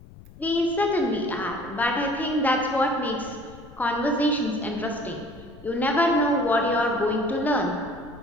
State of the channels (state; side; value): noise; left; rumble, 20 dB below the sound